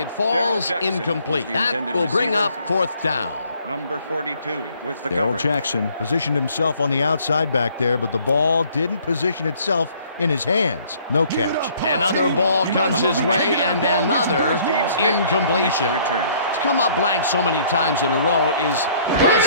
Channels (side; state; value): both; inverted; correlation -0.60